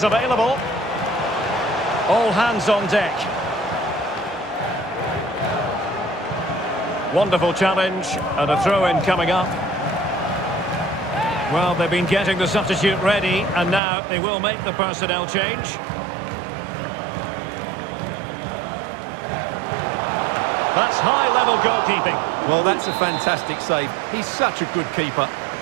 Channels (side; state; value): left; drops out; at 13.8 s